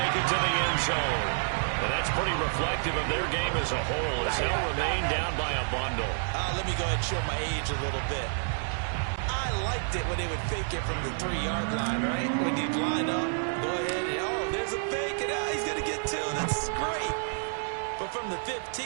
it to the end zone. And that's pretty reflective of their game as a whole, as they'll remain down by a bundle. Let me go ahead and show my age a little bit. I liked it when they would fake it from the 3-yard line, right? When you'd line up, go ahead and, oh, there's a fake, and he's going to get 2. That's great. But from the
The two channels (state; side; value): silent; left; 58 dB below the other